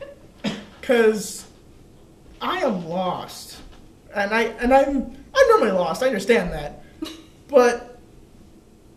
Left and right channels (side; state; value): both; identical; correlation 1.00